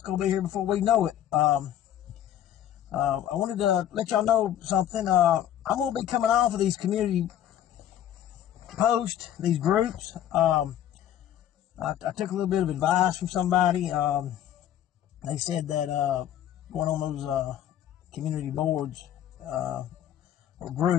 be here before we know it. I wanted to let y'all know something. I'm gonna be coming off of these community posts, these groups. I took a little bit of advice from somebody. They said that going on those community boards or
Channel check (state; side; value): quieter; right; 11.2 dB